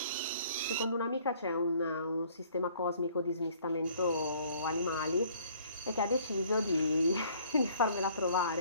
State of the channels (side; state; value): both; inverted; correlation -0.58